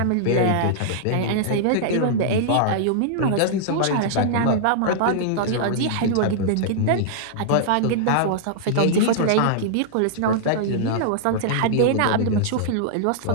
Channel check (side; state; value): both; different; correlation -0.02